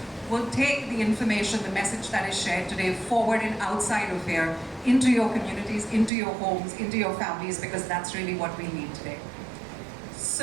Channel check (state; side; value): drops out; left; at 6.1 s